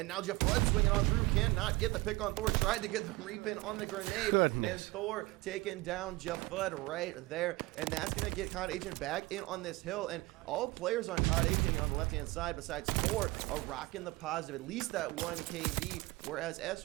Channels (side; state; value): left; quieter; 21.9 dB